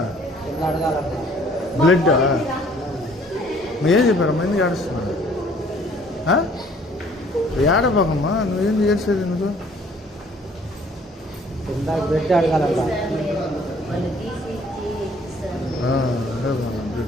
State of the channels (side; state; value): both; normal; correlation 0.58